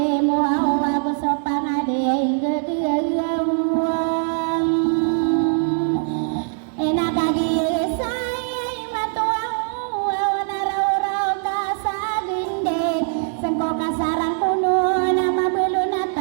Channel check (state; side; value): silent; left; 64 dB below the other